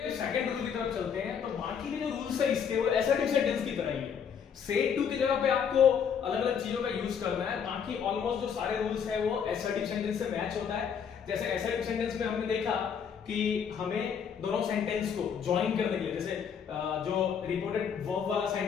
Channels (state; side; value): quieter; right; 7.3 dB